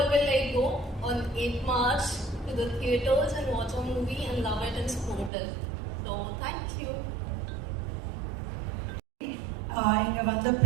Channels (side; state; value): left; drops out; at 5.3 s